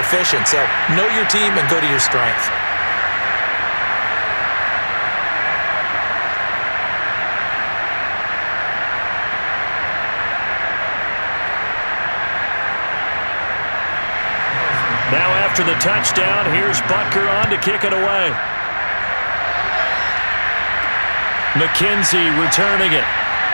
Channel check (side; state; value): both; inverted; correlation -1.00